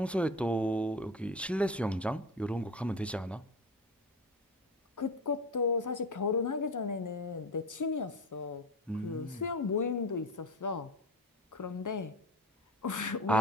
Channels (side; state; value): both; normal; correlation 0.28